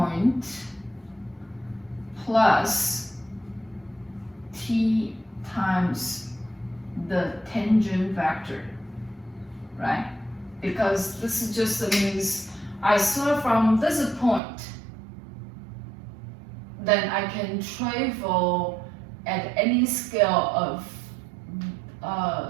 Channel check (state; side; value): drops out; left; at 14.4 s